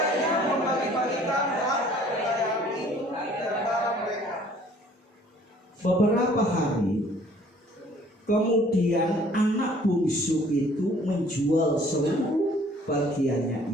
Beberapa hari kemudian anak bungsu itu menjual seluruh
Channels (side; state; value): both; normal; correlation 0.56